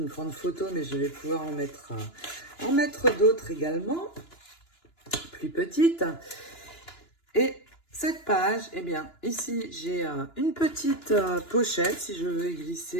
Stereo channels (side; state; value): right; late; 2.9 ms